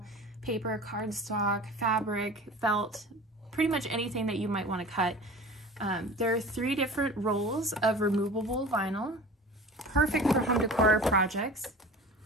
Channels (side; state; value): both; normal; correlation 0.39